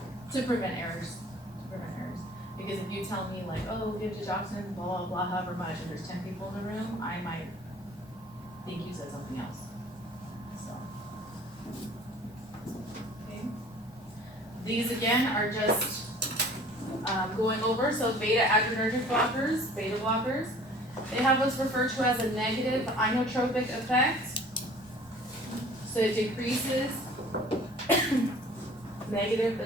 To prevent errors, because if you tell me like, oh, give digoxin, blah, blah, blah, however much, and there's 10 people in the room, I might think you said something else, so. Okay. These again are just, going over, so beta adrenergic blockers, beta blockers, they have what's referred to as a negative inotropic effect. So it decreases, negative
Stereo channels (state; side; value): normal; both; correlation 0.49